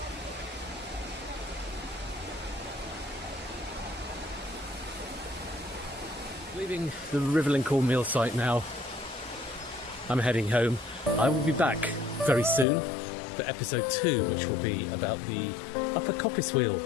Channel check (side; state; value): right; drops out; at 12.7 s